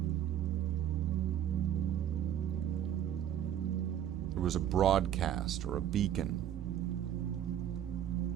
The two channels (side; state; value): left; quieter; 10.6 dB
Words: there was a broadcast or a beacon.